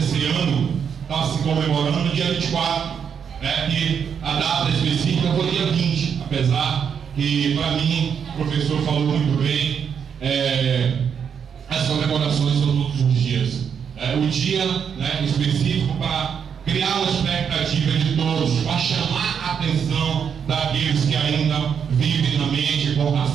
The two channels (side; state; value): left; quieter; 7.3 dB